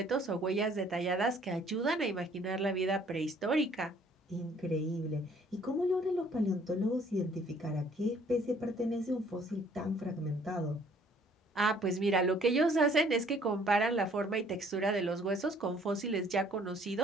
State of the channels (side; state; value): both; normal; correlation 0.59